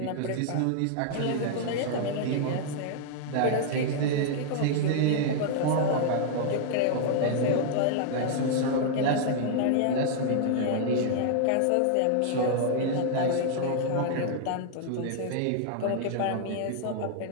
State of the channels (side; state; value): both; different; correlation -0.01